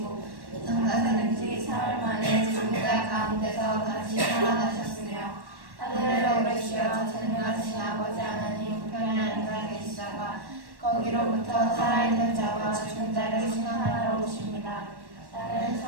장사되는 지 사흘 만에 죽은 자 가운데서 다시 살아나셨으며 하늘에 오르시어 전능하신 아버지 하나님 우편에 앉아 계시다가 거기로부터 살아있는 자와 죽은 자를 심판하러 오십니다. 나는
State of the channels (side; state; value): left; late; 1.1 ms